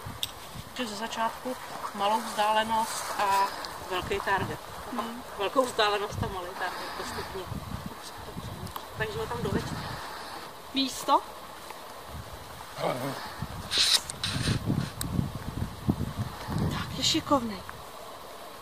Ze začátku malou vzdálenost a velký target. Velkou vzdálenost a malý target postupně. Takže ho tam doveďte. Místo. Tak, je šikovnej.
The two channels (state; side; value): identical; both; correlation 1.00